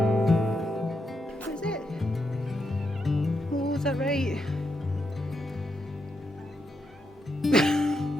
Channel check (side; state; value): both; normal; correlation 0.82